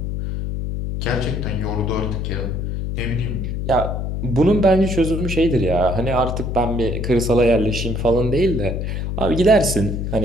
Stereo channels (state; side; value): noise; left; hum, 3 dB below the sound